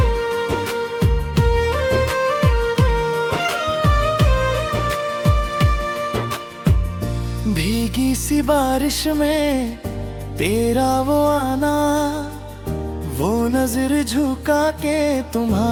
भीगी सी बारिश में तेरा वो आना, वो नजर झुका के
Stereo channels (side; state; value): both; identical; correlation 1.00